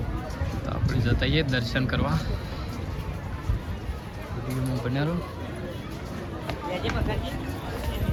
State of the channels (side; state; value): both; identical; correlation 1.00